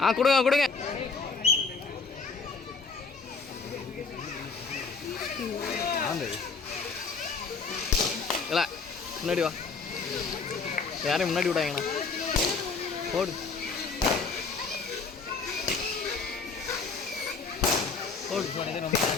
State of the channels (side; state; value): right; quieter; 4.6 dB